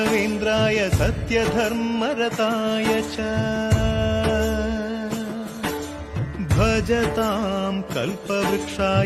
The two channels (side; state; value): both; identical; correlation 1.00